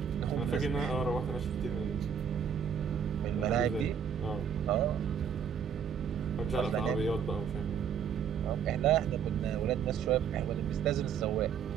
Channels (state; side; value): quieter; left; 7.7 dB